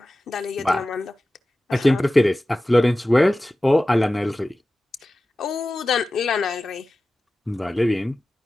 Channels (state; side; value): normal; both; correlation 0.95